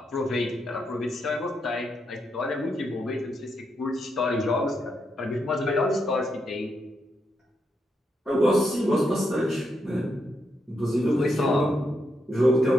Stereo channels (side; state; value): both; normal; correlation 0.81